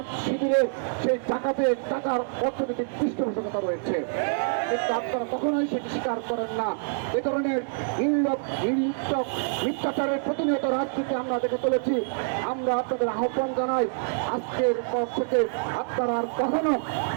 শিবিরের সেই টাকার অর্থনৈতিক পৃষ্ঠপোষকতা রয়েছে, কিন্তু আপনারা কখনোই সেটি স্বীকার করেন না। এ ধরনের মিথ্যাচারের প্রতিনিয়ত রাজনীতি আমরা দেখে চলেছি। আমরা আপনাদের আহ্বান জানাই, আজকের পর থেকে আপনারা আর কখনো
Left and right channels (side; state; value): left; silent; digital silence